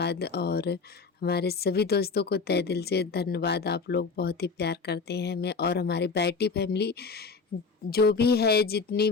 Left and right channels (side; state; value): right; quieter; 4.7 dB